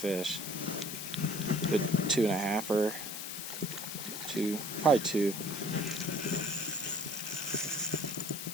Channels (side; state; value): left; noise; hiss, 6 dB below the sound